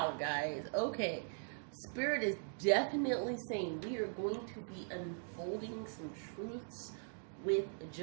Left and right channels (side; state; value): left; silent; digital silence